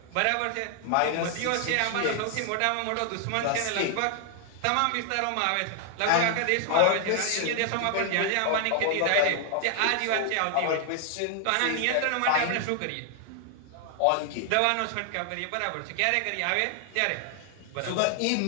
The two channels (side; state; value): both; different; correlation 0.00